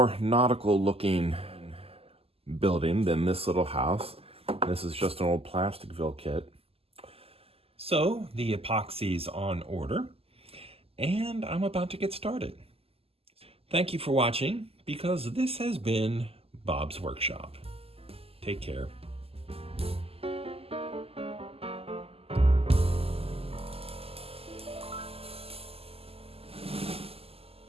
nautical looking building than this little house. This is just an old Plasticville kit. So the epoxy's on order, and I'm about to get started. Thank you for watching, because this has been Bob's Workshop. Take care.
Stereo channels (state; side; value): late; left; 0.28 ms